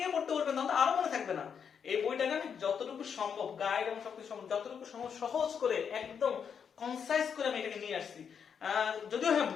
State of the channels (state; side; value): quieter; right; 7.1 dB